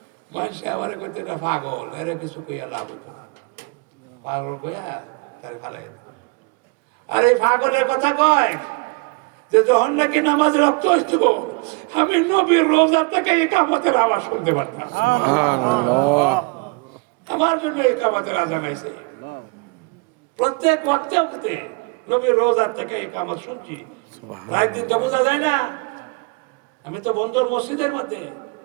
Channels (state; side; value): quieter; left; 30.0 dB